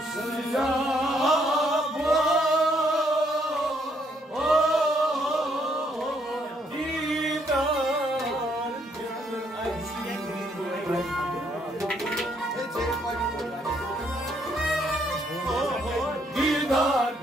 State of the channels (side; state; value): both; normal; correlation 0.71